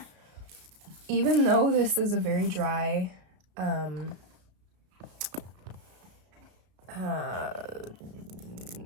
even though this is a very dry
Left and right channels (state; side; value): late; left; 33 ms